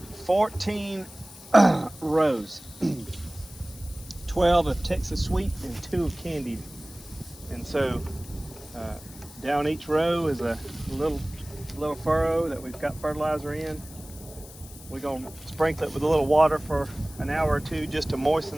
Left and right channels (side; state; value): left; noise; hiss, 18 dB below the sound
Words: 14 rows, 12 of Texas Sweet and 2 of Candied. And so down each row is a little furrow that we've got fertilizer in. We're gonna sprinkle it with a little water for an hour or two just to